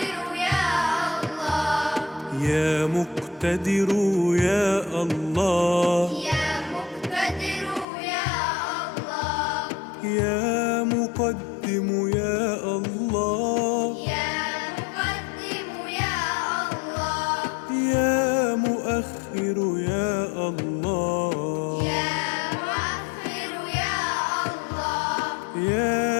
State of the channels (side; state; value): right; drops out; at 7.9 s